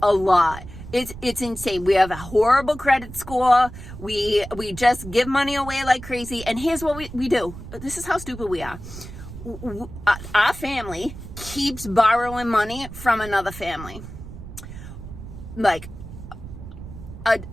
a lot. It's insane. We have a horrible credit score. We just give money away like crazy. And here's what we do. This is how stupid we are. Our family keeps borrowing money from another family. Like a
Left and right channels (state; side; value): noise; right; rumble, 13 dB below the sound